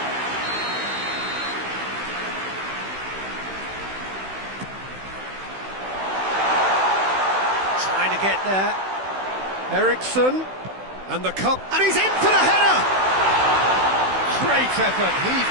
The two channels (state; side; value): late; left; 16 ms